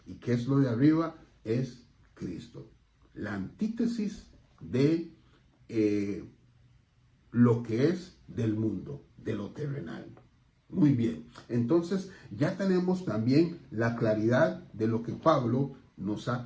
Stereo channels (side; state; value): both; identical; correlation 1.00